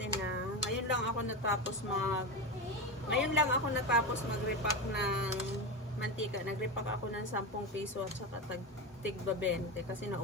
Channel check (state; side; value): normal; both; correlation 0.18